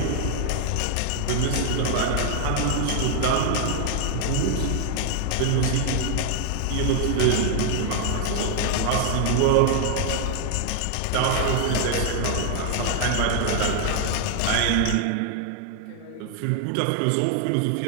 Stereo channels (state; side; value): different; both; correlation 0.00